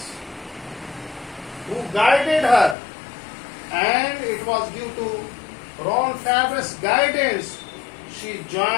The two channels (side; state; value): right; drops out; at 2.8 s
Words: who guided her, and it was due to Ron Forbes' guidance she